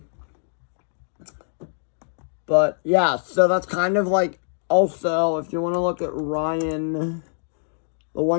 But yeah, so that's kind of like, also, if you want to look at Ryan, the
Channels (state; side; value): silent; right; digital silence